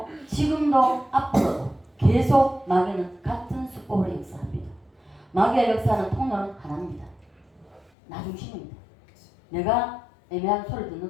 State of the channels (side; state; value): right; drops out; at 7.9 s